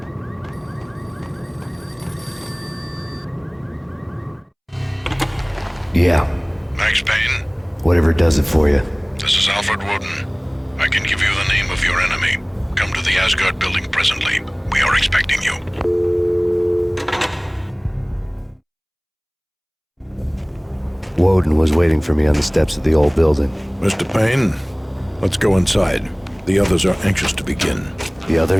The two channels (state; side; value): identical; both; correlation 1.00